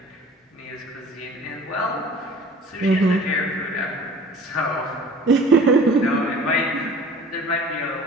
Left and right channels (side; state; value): both; normal; correlation 0.46